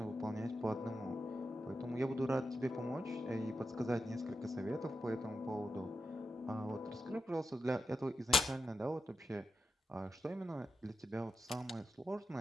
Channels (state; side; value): normal; both; correlation 0.88